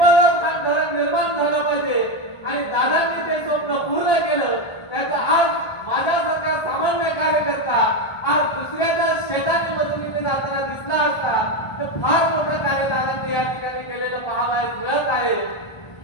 खान धरण निर्माण झालं पाहिजे आणि दादांनी ते स्वप्न पूर्ण केलं. त्याचा आज माझ्यासारखा सामान्य कार्यकर्ता आज दुसऱ्याच्या शेताची मदतीने जाताना दिसला असता तर फार मोठं कार्य दादांनी या ठिकाणी केलेलं पाहावयास मिळत आहे.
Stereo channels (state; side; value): late; right; 1.5 ms